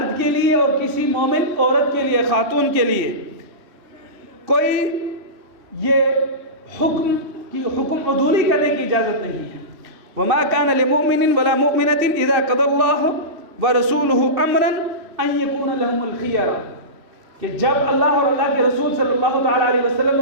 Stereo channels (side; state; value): left; late; 2.7 ms